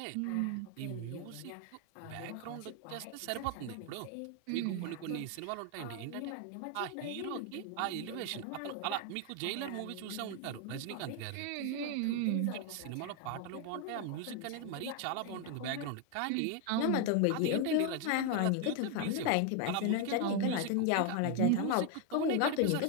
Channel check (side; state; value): both; different; correlation 0.01